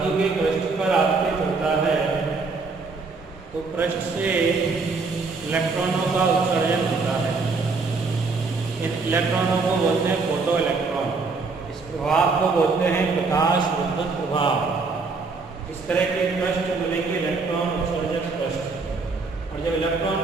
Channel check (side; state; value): left; quieter; 4.2 dB